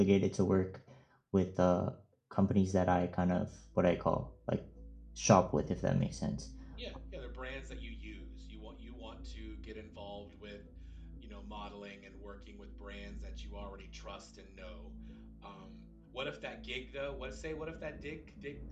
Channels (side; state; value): both; identical; correlation 1.00